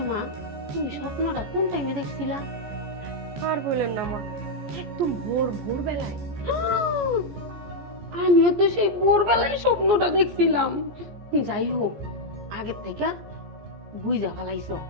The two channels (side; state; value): left; late; 14 ms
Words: মা, তুমি স্বপ্নটা কোন টাইমে দেখছিলা? আর বললেন না মা, একদম ভোরবেলায়। আমিও তো সেই ভোরবেলায় স্বপ্নটা দেখছিলাম। যাই হোক, আগের থেকে বুঝা ফেলাইছো,